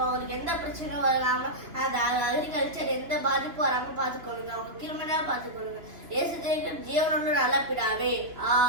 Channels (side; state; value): left; late; 2.9 ms